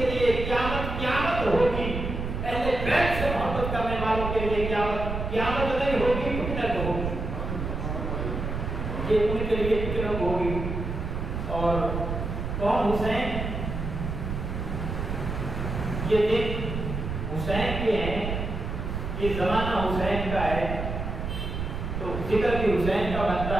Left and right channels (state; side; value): noise; right; rumble, 4 dB below the sound